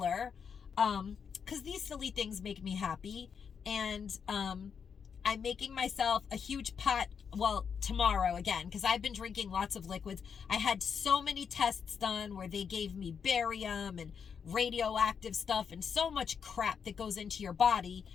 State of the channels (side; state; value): right; quieter; 6.7 dB